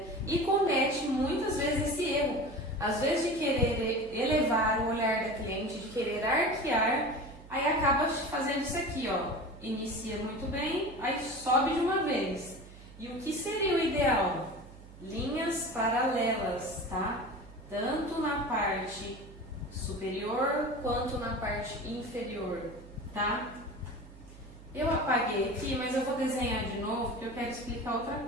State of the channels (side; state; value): right; noise; hum, 18 dB below the sound